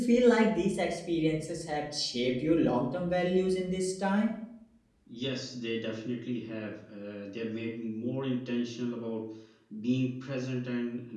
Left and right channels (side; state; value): both; identical; correlation 1.00